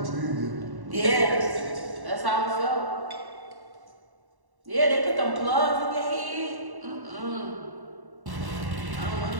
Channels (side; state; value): left; late; 1.1 ms